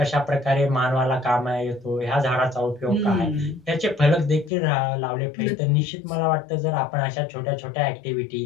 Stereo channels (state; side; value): drops out; right; at 4.5 s